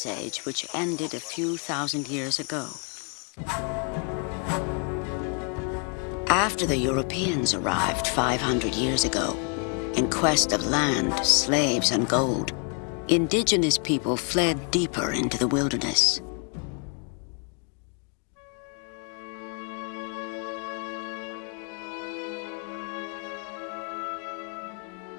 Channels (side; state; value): right; quieter; 38.4 dB